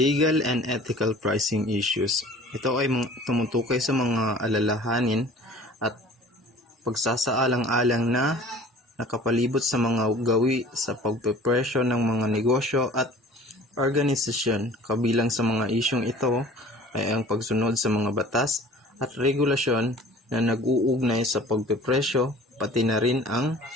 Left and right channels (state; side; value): normal; both; correlation 0.46